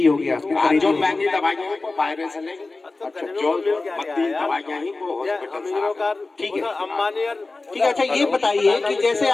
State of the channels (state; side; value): quieter; right; 3.5 dB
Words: होगी आपने? जो महंगी दवाई है वो बाहर से लेंगे। अच्छा, जो 32 दवाइयाँ ही वो हॉस्पिटल से आ गई। ठीक है। अंबानी ठीक है। अच्छा ये बताइए कि जैसे